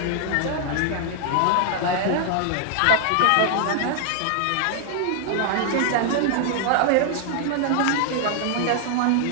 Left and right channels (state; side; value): different; both; correlation 0.00